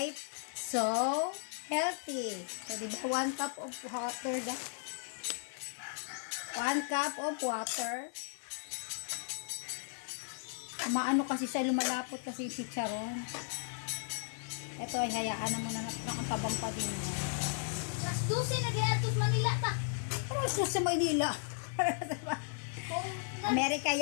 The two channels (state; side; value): silent; right; 54 dB below the other